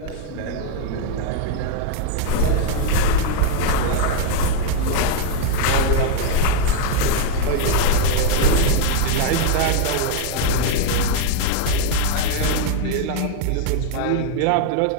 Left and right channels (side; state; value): both; different; correlation 0.00